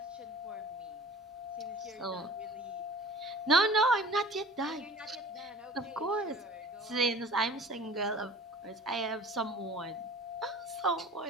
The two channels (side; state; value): both; normal; correlation 0.43